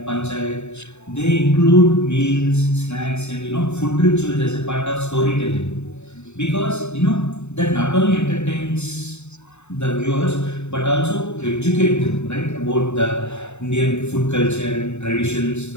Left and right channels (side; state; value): right; late; 0.82 ms